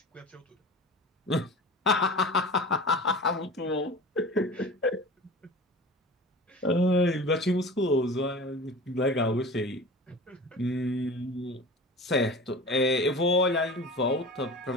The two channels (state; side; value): normal; both; correlation 0.36